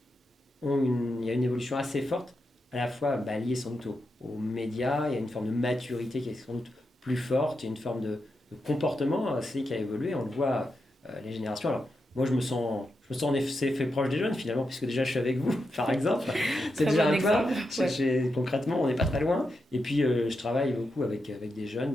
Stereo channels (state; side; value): normal; both; correlation 0.86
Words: il y a une évolution assez forte, à la fois liée sans doute aux médias. Il y a une forme de maturité qui est sans doute plus forte, il y a une forme de comportement aussi qui a évolué. On le voit, les générations. Alors, moi, je me sens en effet fait proche des jeunes finalement, puisque déjà je suis avec vous, par exemple. C'est déjà un pas. Ouais. Concrètement, on n'est pas très loin. Et puis, je travaille beaucoup avec des